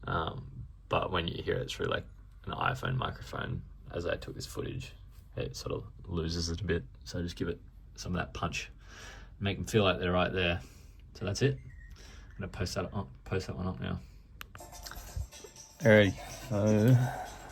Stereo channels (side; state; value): both; identical; correlation 1.00